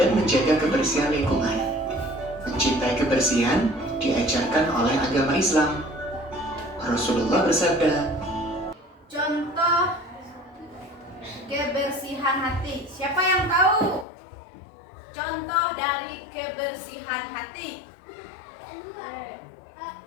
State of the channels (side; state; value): right; drops out; at 14.1 s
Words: menjaga kebersihan lingkungan. Mencintai kebersihan diajarkan oleh agama Islam. Rasulullah bersabda, Contoh kebersihan hati. Siapa yang tahu? Contoh dari kebersihan hati.